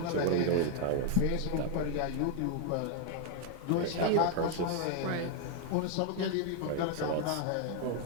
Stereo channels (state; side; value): different; both; correlation 0.00